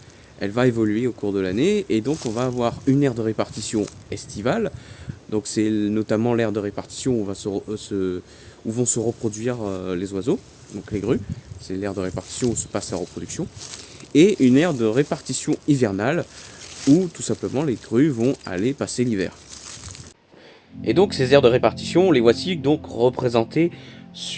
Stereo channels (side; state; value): both; identical; correlation 1.00